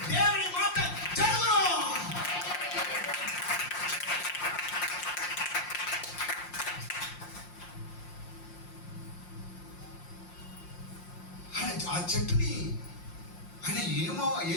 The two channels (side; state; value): right; late; 5.7 ms